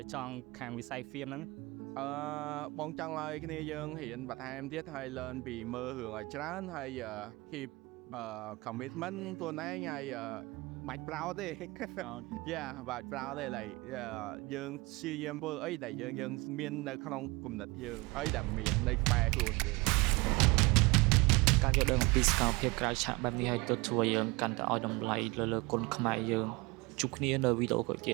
ចង់ខាងវិស័យ film ហ្នឹងបងចង់ឲ្យគ្នាយើងរៀនបន្ថែមទៀតហើយ learn ពីមើលរឿងឲ្យច្រើនហើយ keep commitment ខ្លួនឯងហើយបាច់ប្រោតទេ យ៉ាបាច់ប្រោតទេឡើយយើងព្យាយាមធ្វើអីដែលយើងមាននៅក្នុងគំនិតយើងអីដែលមាននៅក្បែរខ្លួនយើង ការយល់ដឹងអំពីសកម្មភាពក្រៅឆាកបែបនេះឲ្យទៅធ្វើយើងកាន់តែឲ្យតម្លៃលើគុណខ្មែរយើងជួបគ្នានៅវីដេអូក្រោយទៀ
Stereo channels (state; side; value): quieter; left; 24.2 dB